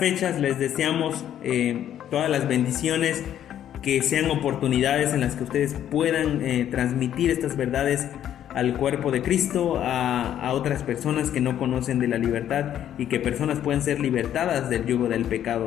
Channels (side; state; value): right; quieter; 10.7 dB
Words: les deseamos todas las bendiciones, que sean oportunidades en las que ustedes puedan transmitir estas verdades al cuerpo de Cristo, a otras personas que no conocen de la libertad, y que personas puedan ser libertadas del yugo del